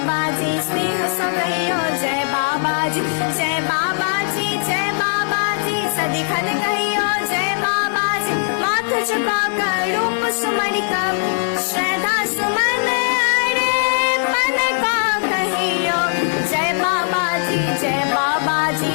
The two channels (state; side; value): silent; right; digital silence